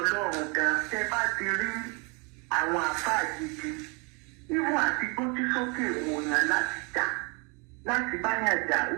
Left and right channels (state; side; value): quieter; left; 32.3 dB